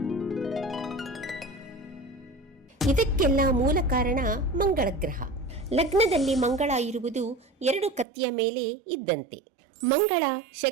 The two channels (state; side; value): drops out; left; at 8.1 s